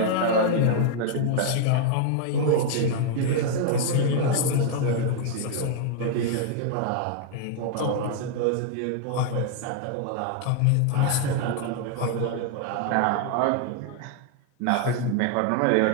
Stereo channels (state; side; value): different; both; correlation 0.00